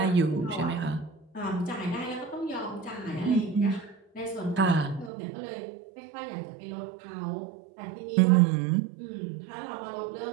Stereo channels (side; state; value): left; drops out; at 5.1 s